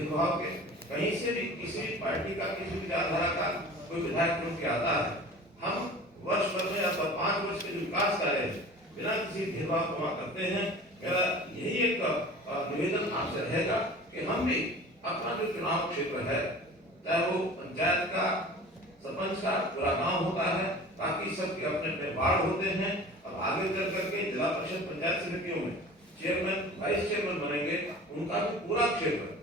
के। कहीं से भी किसी भी पार्टी का किसी विचारधारा का कोई विधायक चुन के आता है, हम वर्ष भर में या 5 वर्ष के जो विकास कार्य है बिना किसी भेदभाव को वहाँ करते हैं। मेरा यही एक निवेदन आपसे रहेगा कि हम भी अपना जो चुनाव क्षेत्र है चाहे वो पंचायत का, सरपंच का, पूरा गांव होता है, बाकी सबके अपने अपने वार्ड होते हैं और आगे चल करके जिला परिषद पंचायत समितियों में चेयरमैन, वाइस चेयरमैन बनेंगे, उनका भी पूरा क्षेत्र,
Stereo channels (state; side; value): normal; both; correlation 0.40